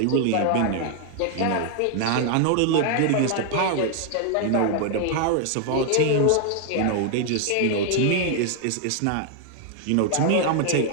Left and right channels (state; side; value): different; both; correlation 0.00